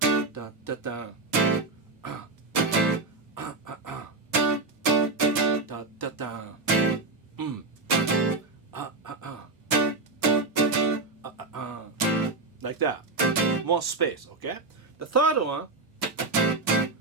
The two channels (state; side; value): quieter; left; 3.4 dB